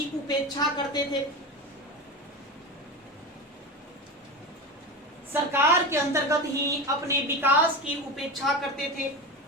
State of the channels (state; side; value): normal; both; correlation 0.23